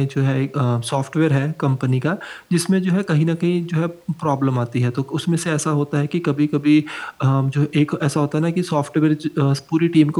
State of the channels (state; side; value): identical; both; correlation 1.00